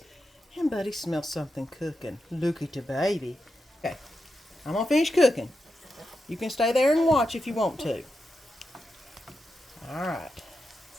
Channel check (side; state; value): both; normal; correlation 0.88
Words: And Buddy smells something cooking. Look at the baby. Okay, I'm going to finish cooking. You can stay there and watch if you want to. Alright.